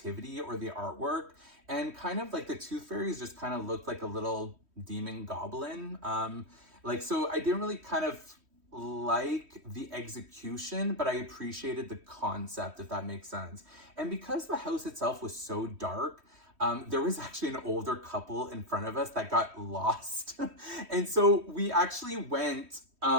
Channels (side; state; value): left; late; 3.1 ms